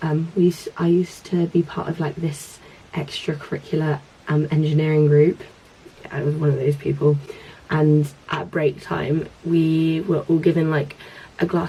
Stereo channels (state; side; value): identical; both; correlation 1.00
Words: I used to be part of like this extracurricular engineering group. Yeah, I was one of those people, and at break time we were all given like a